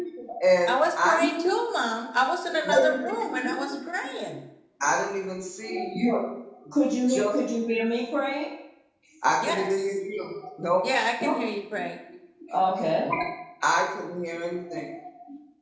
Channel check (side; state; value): both; identical; correlation 1.00